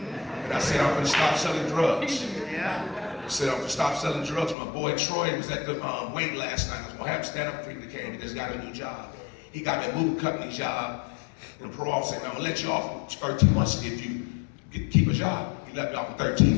I said, I'm gonna stop selling drugs. Yeah. I said, I'm gonna stop selling drugs. My boy Troy was at the wait last night. I was gonna have him stand up for him. He came, he just got a new job. He got me a moving company job. And the parole officer said, I'm gonna let you off in 13 months if you keep a job. He let me off in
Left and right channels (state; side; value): drops out; right; at 4.5 s